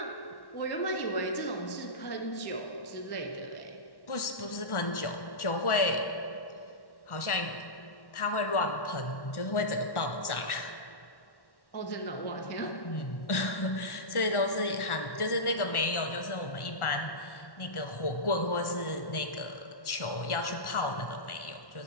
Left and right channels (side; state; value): right; late; 1.1 ms